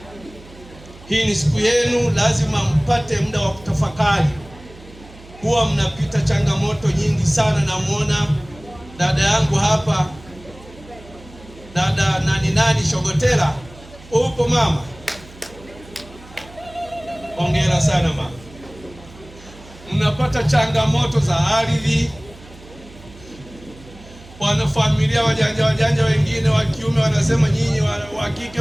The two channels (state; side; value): noise; right; hum, 21 dB below the sound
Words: Hii ni siku yenu, lazima mpate muda wa kutafakari. Huwa mnapita changamoto nyingi sana. Namuona dada yangu hapa, dada nani Shogotera. Upo mama? Hongera sana mama. Mnapata changamoto za ardhi. Wanafamilia wajanja wengine wa kiume wanasema nyinyi wa kike